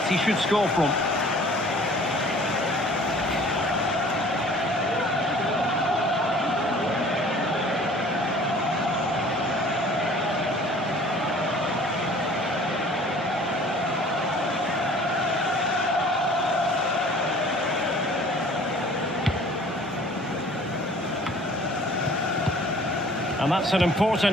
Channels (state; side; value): normal; both; correlation 0.50